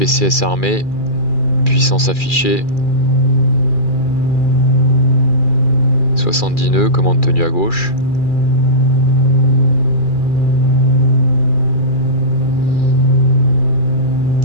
armé, puissance affichée. 70 nœuds, commande tenue à gauche.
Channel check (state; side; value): late; right; 2.4 ms